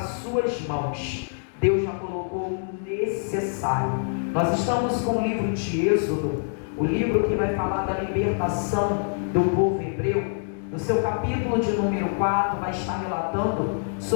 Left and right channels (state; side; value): silent; right; digital silence